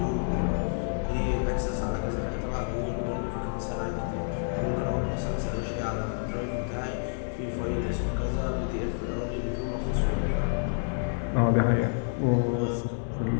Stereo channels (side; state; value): right; silent; 59 dB below the other